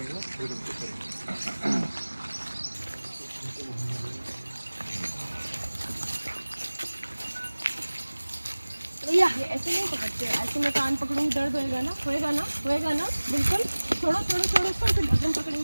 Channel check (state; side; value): inverted; both; correlation -1.00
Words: हैं। भैया ऐसे नहीं पकड़ते, ऐसे मैं कान पकड़ूंगी दर्द होएगा ना, होएगा ना, होएगा ना, बिल्कुल। छोड़ो छोड़ो छोड़ो उसको, फिर गर्दन